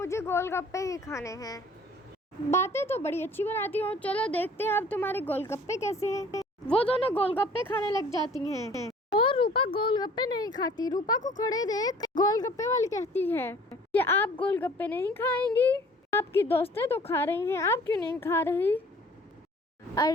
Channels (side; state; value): both; normal; correlation 0.51